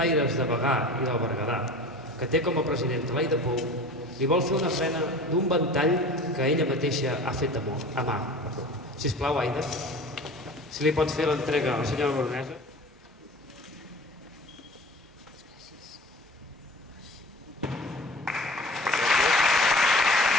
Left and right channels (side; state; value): both; normal; correlation 0.40